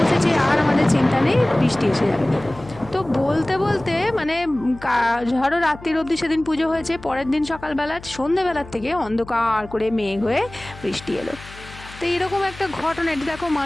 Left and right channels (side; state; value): left; noise; hum, 18 dB below the sound